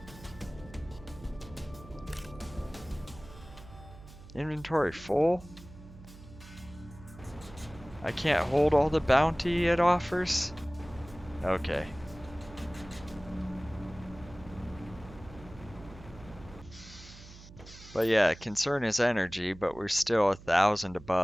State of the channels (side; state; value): right; noise; hum, 18 dB below the sound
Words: Inventory full? I can't hold all the bounty it offers? Okay. But yeah, concern is energy, but we're still 1,000